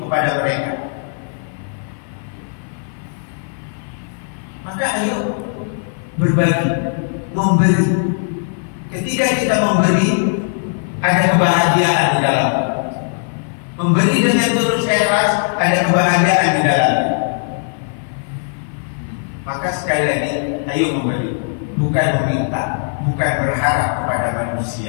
kepada mereka. Maka ayo berbagi, memberi. Ketika kita memberi, ada kebahagiaan di dalam. Memberi dengan tulus ikhlas, ada kebahagiaan di dalam. Maka sekali lagi, ayo memberi, bukan meminta, bukan berharap kepada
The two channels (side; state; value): right; silent; 57 dB below the other